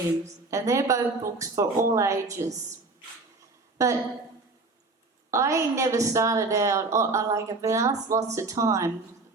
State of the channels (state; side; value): quieter; left; 3.5 dB